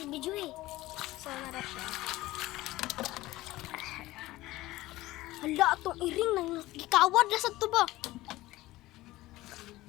video eh. So, narap siya. Hala, itong iring nang gikawad na sa tuba.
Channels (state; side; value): quieter; right; 17.6 dB